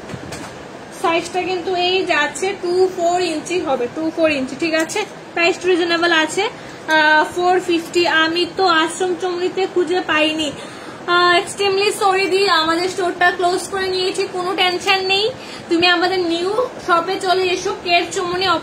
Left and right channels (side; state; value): both; identical; correlation 1.00